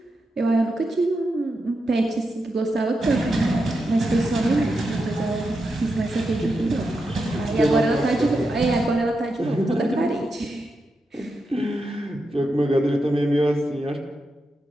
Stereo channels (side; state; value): both; normal; correlation 0.87